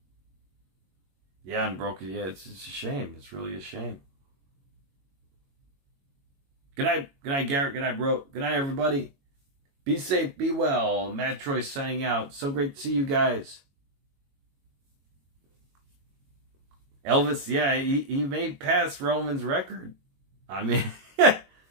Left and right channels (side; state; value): left; late; 22 ms